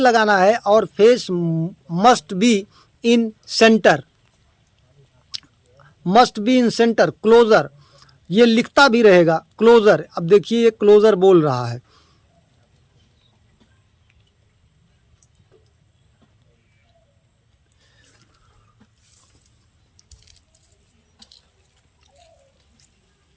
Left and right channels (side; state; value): both; identical; correlation 1.00